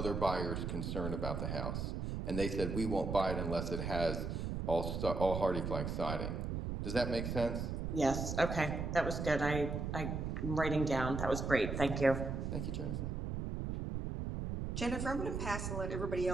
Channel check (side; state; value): right; noise; rumble, 3 dB below the sound